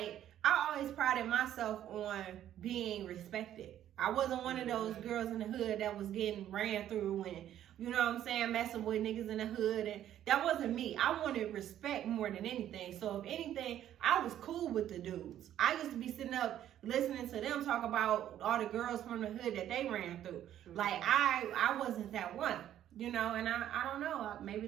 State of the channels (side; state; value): left; quieter; 11.4 dB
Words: I always prided myself on being respected. I wasn't one of those girls in the hood that was getting ran through and, you know what I'm saying, messing with niggas in the hood. And that wasn't me. I wanted respect more than anything. So if anything, I was cool with the dudes. I used to be sitting up listening to them talk about all the girls from the hood that they ran through. Mm-hmm. Like, I wasn't that one, and I don't know. Maybe